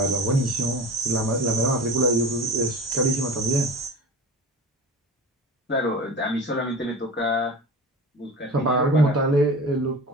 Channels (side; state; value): both; normal; correlation 0.34